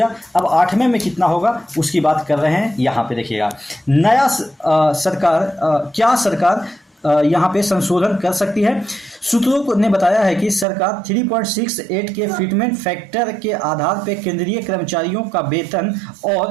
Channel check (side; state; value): left; drops out; at 10.7 s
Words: अब 8वें में कितना होगा उसकी बात कर रहे हैं। यहाँ पे देखिएगा, नया क्या सरकार यहाँ पे संशोधन कर सकती है। सूत्रों ने बताया है कि सरकार 3.68 के फिटमेंट फैक्टर के आधार पर केंद्रीय कर्मचारियों का वेतन